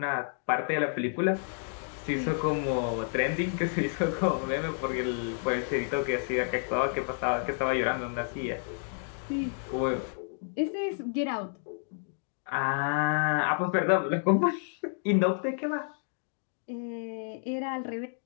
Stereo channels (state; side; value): silent; right; 58 dB below the other